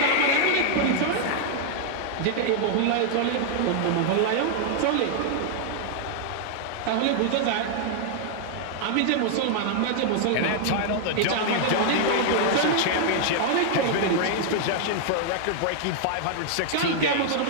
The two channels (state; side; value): different; both; correlation 0.00